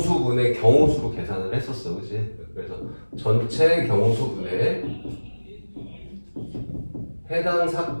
경우수로 계산을 했었어, 그치? 그래서 전체 경우수분의 해당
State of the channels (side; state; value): both; inverted; correlation -1.00